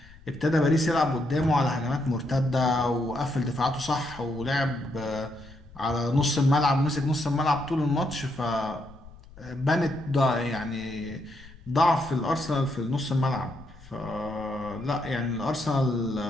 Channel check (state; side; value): noise; left; rumble, 21 dB below the sound